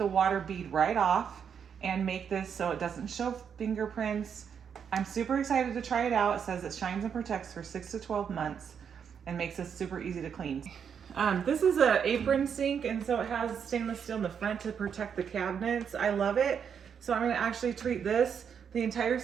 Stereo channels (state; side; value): quieter; left; 7.4 dB